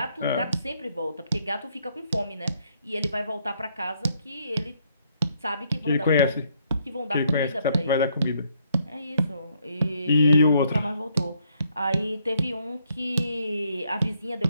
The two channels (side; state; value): both; inverted; correlation -0.71